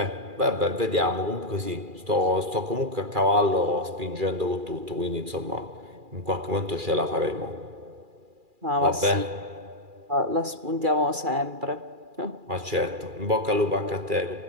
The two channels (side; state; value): left; late; 2.4 ms